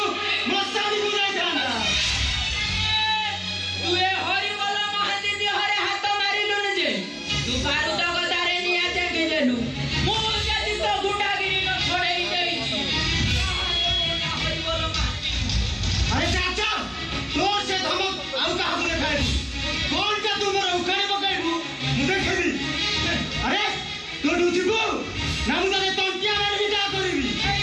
ମଶାଣିକୁ ଯାଇଥାନ୍ତା। ତୁ ଏ ହରିବୋଲ ମହାନ୍ତି ଦେହରେ ହାତ ମାରିଲୁନି ଯେ ତୁ ବାରୁଦ ଗଦାରେ ନିଆଁ ଜାଗିଦେଲୁ। ମୁଁ ଯଦି ତ ଗୁଣ୍ଡାଗିରି ନ ଛଡ଼େଇ ଦେଇଛି ହରିବୋଲ ମହାନ୍ତି। ଆରେ ଚାଚା ତୋର ସେ ଧମକ ଆଉ କାହାକୁ ଦେଖାଇବୁ। କଣଟା ତୁ ମୋର ଉଖାଣି ପକାଇବୁ ମୁଁ ଦେଖିବି। ଆରେ ତୁ ଏଠୁ ଯିବୁ ନା ମୁଁ ତତେ ତଣ୍ଟିଆ ମାରିବି ଯାହା କରିବି।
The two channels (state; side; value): identical; both; correlation 1.00